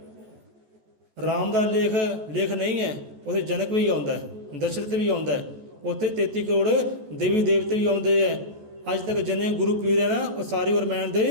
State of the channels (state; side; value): late; left; 14 ms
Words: ਰਾਮ ਦਾ ਲੇਖ ਨਹੀਂ ਹੈ, ਉੱਥੇ ਜਨਕ ਵੀ ਆਉਂਦਾ ਹੈ, ਦਸ਼ਰਥ ਵੀ ਆਉਂਦਾ ਹੈ, ਉੱਥੇ 33 ਕਰੋੜ ਦੇਵੀ ਦੇਵਤੇ ਵੀ ਆਉਂਦੇ ਹੈ। ਅੱਜ ਤੱਕ ਜਿੰਨੇ ਗੁਰੂ ਪੀਰ ਹੈ ਨਾ, ਉਹ ਸਾਰੇ ਰਮਾਇਣ